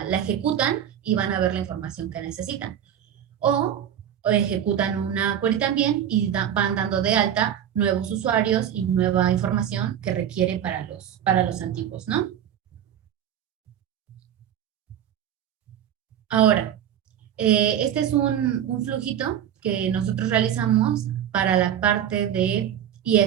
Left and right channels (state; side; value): quieter; left; 9.8 dB